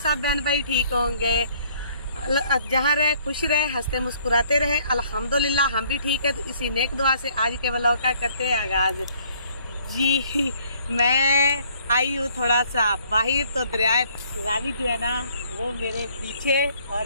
बहन भाई ठीक होंगे, जहाँ रहे खुश रहे, हंसते मुस्कुराते रहे। अल्हम्दुलिल्लाह हम भी ठीक है। तो इसी नेक दुआ से आज के व्लॉग का करते हैं आगाज। जी मैं आई हूँ थोड़ा सा बाहर, तो दरिया रावी जो है ना वो मेरे पीछे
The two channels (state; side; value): inverted; both; correlation -0.61